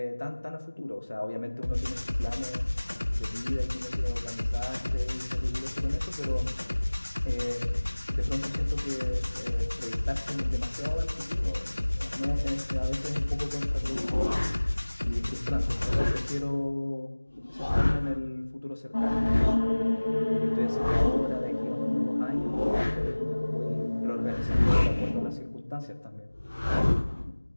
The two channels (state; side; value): inverted; both; correlation -1.00